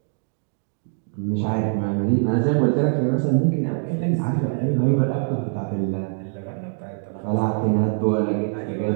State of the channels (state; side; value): silent; left; 63 dB below the other